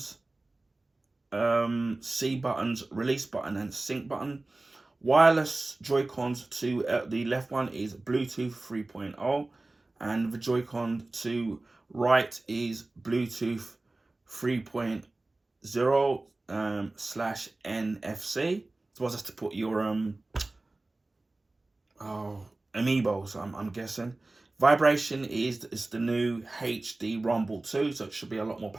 C buttons, release button, and sync button. Wireless Joy-Cons to the left one is Bluetooth 3.0, and the Joy-Con to right is Bluetooth 3.0 slash NFC. So just to put your amiibos, I'm guessing. Vibration is the new HD Rumble 2, so it should be a lot more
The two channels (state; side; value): quieter; left; 3.0 dB